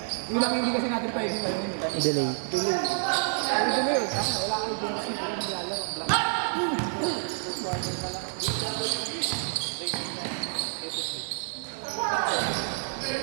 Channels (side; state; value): left; silent; digital silence